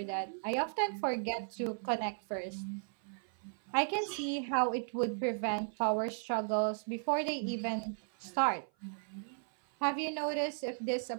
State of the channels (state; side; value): silent; left; 54 dB below the other